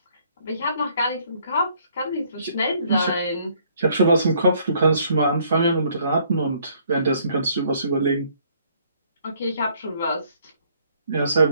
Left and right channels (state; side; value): inverted; both; correlation -0.64